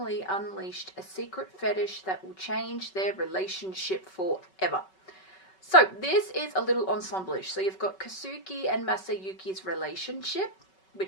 unleashed a secret fetish that will change their relationship forever? So this is a little ensemble-ish. So you've got Kasuki and Masayuki's relationship,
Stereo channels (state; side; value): late; right; 5.3 ms